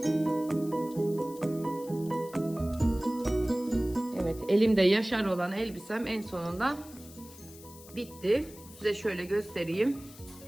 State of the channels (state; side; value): noise; left; hiss, 19 dB below the sound